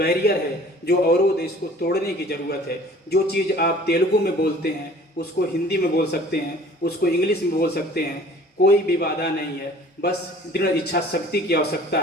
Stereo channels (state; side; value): normal; both; correlation 0.49